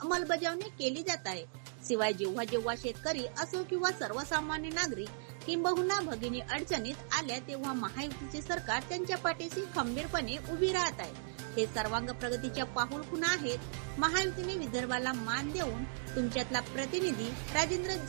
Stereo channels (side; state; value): left; silent; digital silence